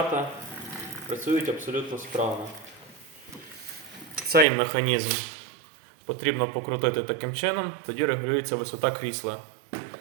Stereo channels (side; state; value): left; drops out; at 4.5 s